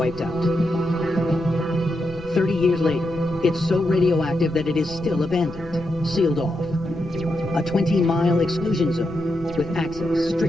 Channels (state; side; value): noise; right; rumble, 18 dB below the sound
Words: out. 30 years later, it's so radioactive that it is still abandoned, sealed off. A 20-mile exclusion zone with access